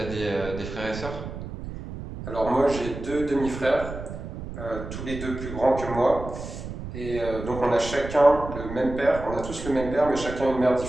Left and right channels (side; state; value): right; noise; rumble, 9 dB below the sound